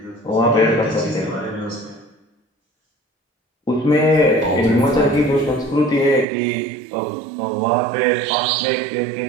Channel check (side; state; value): left; drops out; at 6.2 s